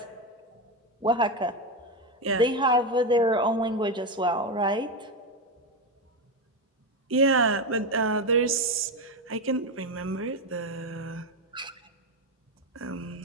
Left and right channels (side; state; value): both; normal; correlation 0.11